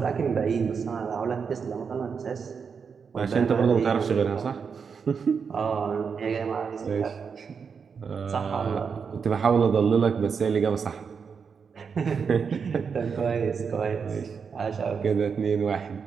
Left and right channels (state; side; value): quieter; left; 6.0 dB